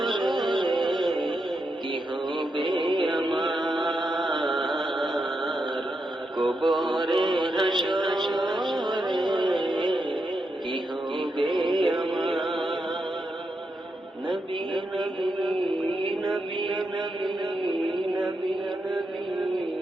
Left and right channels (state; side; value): normal; both; correlation 0.84